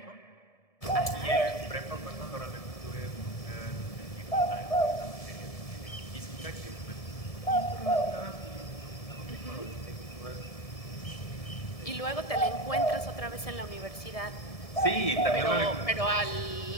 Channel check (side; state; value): right; late; 1.7 ms